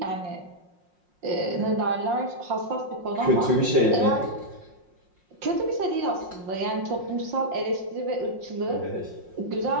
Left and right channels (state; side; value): late; left; 5.6 ms